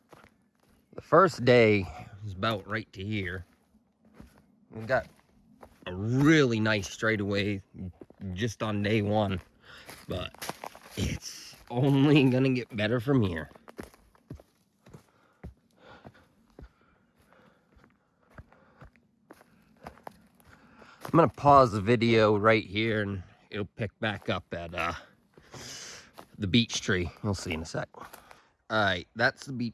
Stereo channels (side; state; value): both; identical; correlation 1.00